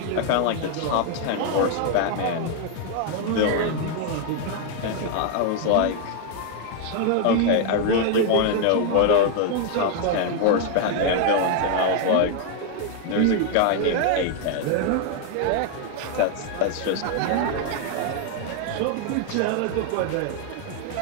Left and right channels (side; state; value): both; different; correlation 0.00